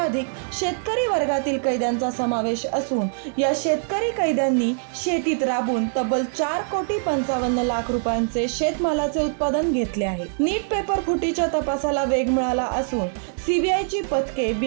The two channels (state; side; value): silent; left; digital silence